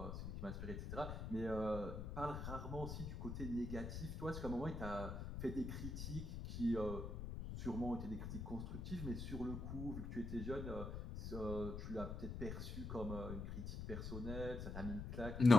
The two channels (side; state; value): left; noise; rumble, 5 dB below the sound